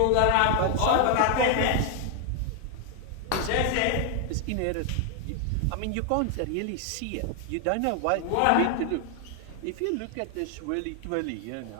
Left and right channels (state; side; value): different; both; correlation 0.00